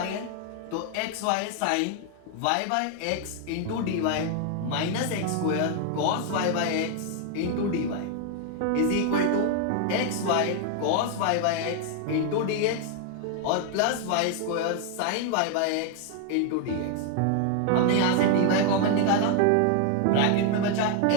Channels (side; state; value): both; different; correlation 0.00